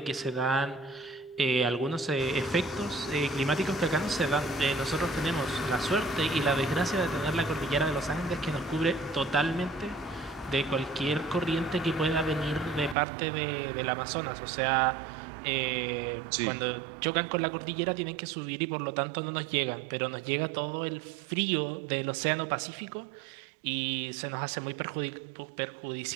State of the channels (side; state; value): left; drops out; at 13.0 s